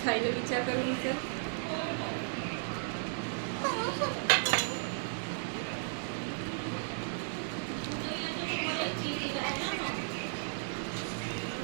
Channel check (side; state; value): left; silent; digital silence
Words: खायला विचार करून विचार